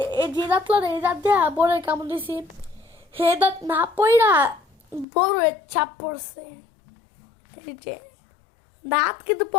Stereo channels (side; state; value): right; drops out; at 5.1 s